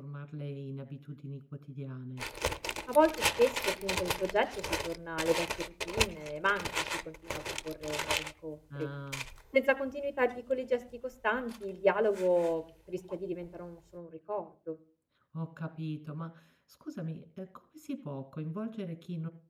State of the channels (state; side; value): identical; both; correlation 1.00